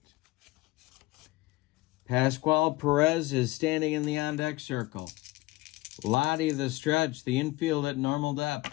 Pascual Perez is standing in the on-deck circle. Lottie the stretch, the infield at normal depth.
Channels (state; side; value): quieter; right; 20.3 dB